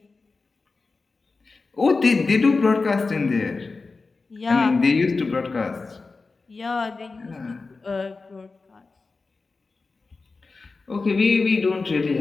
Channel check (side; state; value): right; quieter; 4.0 dB